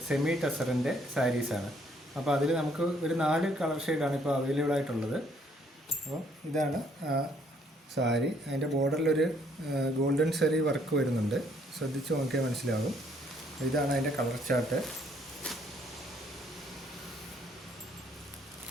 സെമി ടസറിൻ്റെ സാരീസാണ്. അപ്പോൾ അതിൽ നമുക്ക് ഒരു 4 കളർ ഷെയ്ഡാണ് ഇപ്പോൾ അവൈലബിൾ ആയിട്ടുള്ളത്. അപ്പോൾ ഇതാണ് സാരി. അതിൻ്റെ ബോർഡറിലൊരു ഗോൾഡൻ സെറി വർക്ക് വരുന്നുണ്ട്, ശ്രദ്ധിച്ച് നോക്കിയാൽ മനസ്സിലാകും. ഇതാണ് അതിൻ്റെ കളർ ചാർട്ട്.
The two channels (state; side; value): normal; both; correlation 0.66